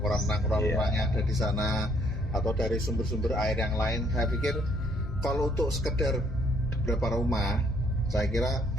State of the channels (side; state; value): both; normal; correlation 0.66